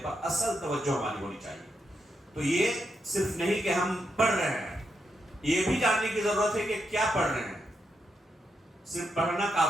پر اصل توجہ ہماری ہونی چاہیے. تو یہ صرف نہیں کہ ہم پڑھ رہے ہیں، یہ بھی جاننے کی ضرورت ہے کہ کیا پڑھ رہے ہیں. صرف پڑھنا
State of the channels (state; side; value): normal; both; correlation 0.83